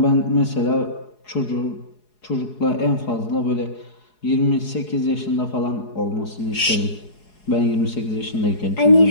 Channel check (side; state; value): right; late; 4.8 ms